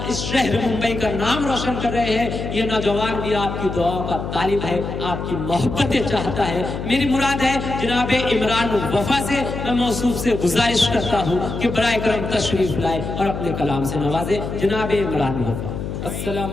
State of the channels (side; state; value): left; noise; hum, 6 dB below the sound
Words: इस शहर मुंबई का नाम रोशन कर रहे हैं। ये नौजवान भी आपकी दुआओं का तालिब है, आपकी मोहब्बतें चाहता है। मेरी मुराद है जनाब इमरान वफा से मैं मौसूफ से गुजारिश करता हूँ कि बराए करम तशरीफ लाए और अपने कलाम से नवाजे। जनाब इमरान वफा। अस्सलाम